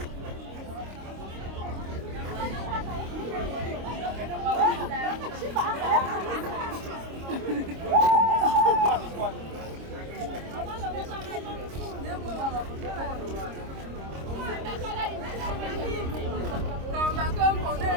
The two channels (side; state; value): left; late; 26 ms